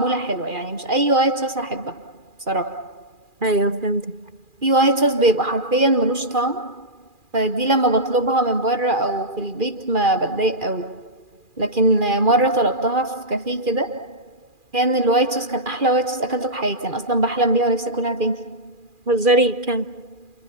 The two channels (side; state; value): left; late; 2.4 ms